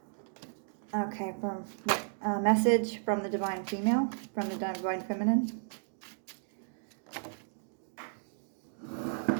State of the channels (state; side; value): silent; left; digital silence